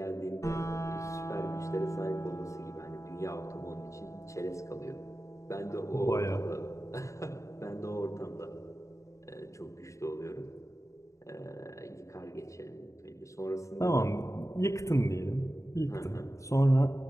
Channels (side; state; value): right; late; 0.15 ms